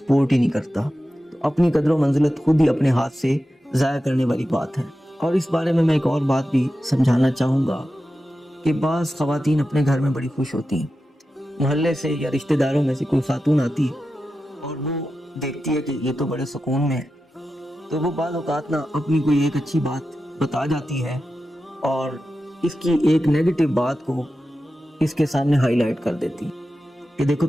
ہی نہیں کرتا۔ تو اپنی قدر و منزلت خود ہی اپنے ہاتھ سے ضائع کرنے والی بات ہے۔ اور اس بارے میں ایک اور بات بھی سمجھانا چاہوں گا کہ بعض خواتین اپنے گھر میں بڑی خوش ہوتی ہیں، محلے سے یا رشتہ داروں میں سے کوئی خاتون آتی ہے اور وہ دیکھتی ہے کہ یہ تو بڑے سکون میں ہے، تو وہ بعض اوقات نا اپنی کوئی ایک اچھی بات بتا جاتی ہے اور اس کی ایک نیگیٹو بات کو اس کے سامنے ہائی لائٹ کر دیتی ہے کہ دیکھو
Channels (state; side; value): normal; both; correlation 0.92